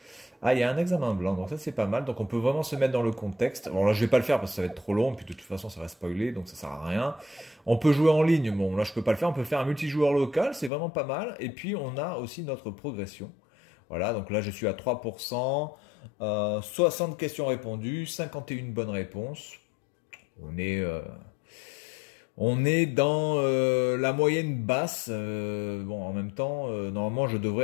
Ah, il y a un examen blanc, donc ça c'est pas mal. Donc on peut vraiment se mettre dans le contexte. Bon là je vais pas le faire parce que ça va être trop long, puis de toute façon ça va spoiler, donc ça sert à rien. On peut jouer en ligne, bon là je peux pas le faire, on peut faire un multijoueur local, c'est vraiment pas mal. Et puis on a aussi notre progression. Voilà, donc là je suis à 3%, 60 questions répondues, 51 bonnes réponses. On est... On est dans la moyenne basse. Bon, en même temps, normalement, je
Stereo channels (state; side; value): drops out; right; at 10.7 s